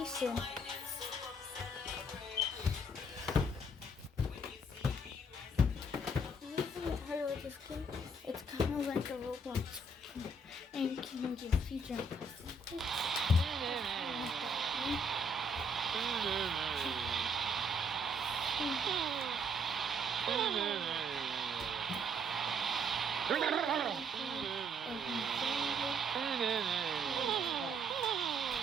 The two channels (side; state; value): both; normal; correlation 0.67